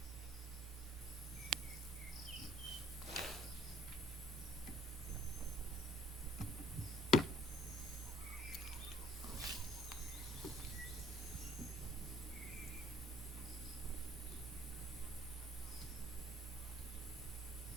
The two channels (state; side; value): normal; both; correlation 0.58